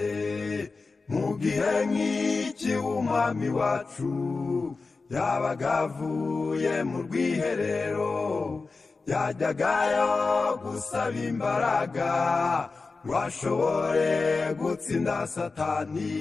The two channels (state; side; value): quieter; right; 4.1 dB